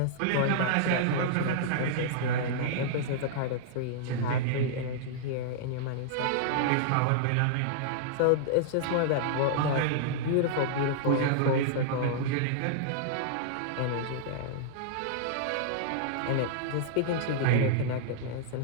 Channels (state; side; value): different; both; correlation -0.02